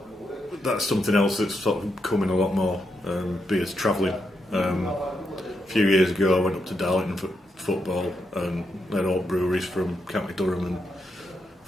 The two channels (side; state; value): both; normal; correlation 0.82